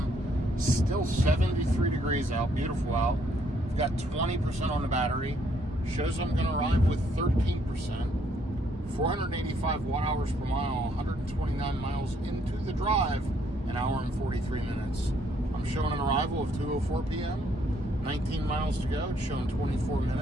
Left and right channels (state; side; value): normal; both; correlation 0.68